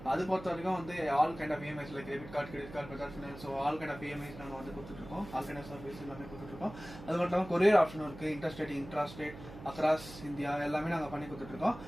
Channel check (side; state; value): right; noise; hum, 15 dB below the sound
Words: அது பொறுத்த வரைக்கும் வந்து all kind of EMIs like debit card, credit card, Bajaj finance, so all kind of EMIs நாங்க வந்து கொடுத்துட்டு இருக்கோம். ஆல் கைண்ட் ஆஃப் சர்வீஸ் எல்லாமே கொடுத்துட்டு இருக்கோம். அது மட்டும் இல்லாமல் கொரியர் ஆப்ஷனும் இருக்கு. இன்ட்ராஸ்டேட் அக்ராஸ் இந்தியா எல்லாமே நாங்க பண்ணி கொடுத்துட்டு இருக்கோம்.